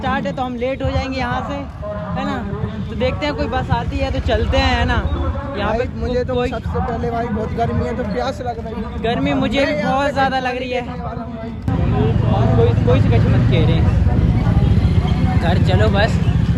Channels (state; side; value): identical; both; correlation 1.00